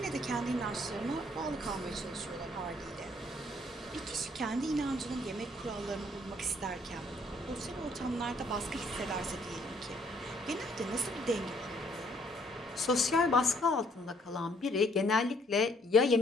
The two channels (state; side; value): normal; both; correlation 0.65